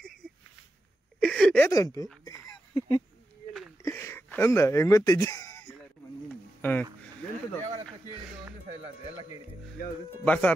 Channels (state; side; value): normal; both; correlation 0.89